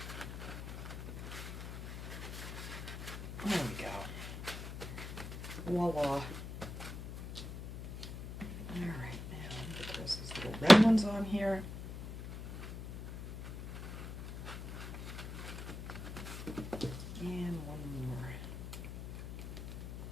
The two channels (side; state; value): left; noise; hum, 9 dB below the sound